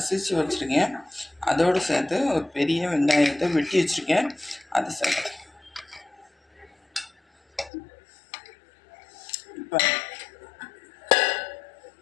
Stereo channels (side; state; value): right; drops out; at 7.7 s